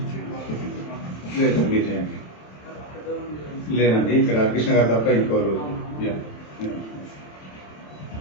లేదండి ఇక్కడ హరికృష్ణ గారు తప్ప ఇంకోరు.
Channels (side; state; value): right; late; 27 ms